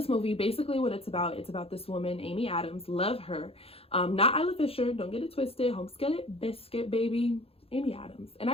movie, basically what it's about this woman, Amy Adams. Love her. Not Isla Fisher, don't get it twisted. Homeskin biscuit baby, Amy Adams. And I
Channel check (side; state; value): right; late; 0.28 ms